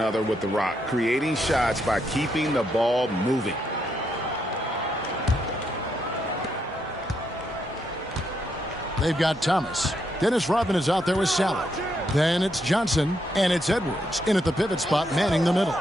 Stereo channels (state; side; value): normal; both; correlation 0.78